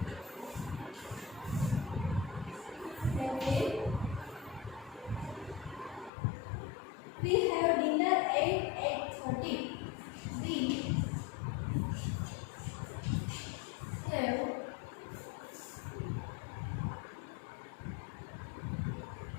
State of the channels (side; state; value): right; drops out; at 6.1 s